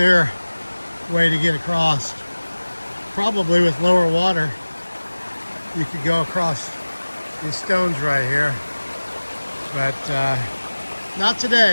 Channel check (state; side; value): inverted; both; correlation -1.00